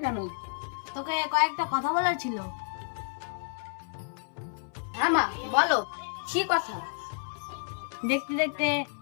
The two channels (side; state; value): right; silent; 58 dB below the other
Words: কেন? তোকে কয়েকটা কথা বলার ছিল। হ্যাঁ মা বলো, কি কথা? দেখতে দেখতে